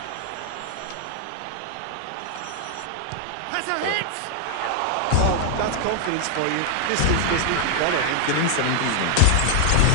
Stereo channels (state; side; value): different; both; correlation 0.00